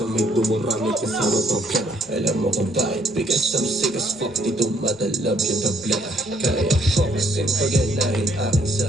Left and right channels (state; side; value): noise; right; rumble, 30 dB below the sound